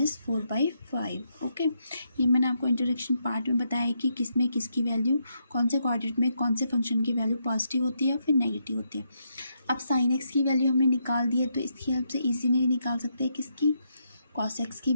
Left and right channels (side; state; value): both; inverted; correlation -0.80